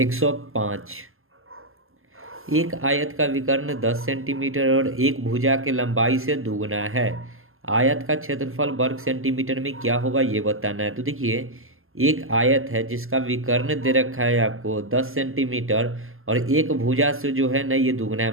एक आयत का विकर्ण 10 सेंटीमीटर और एक भुजा के लंबाई से दुगुना है। आयत का क्षेत्रफल वर्ग सेंटीमीटर में क्या होगा ये बताना है। तो देखिए एक आयत है जिसका विकर्ण दे रखा है आपको 10 सेंटीमीटर और एक भुजा से जो है ना ये दुगना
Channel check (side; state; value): left; late; 0.61 ms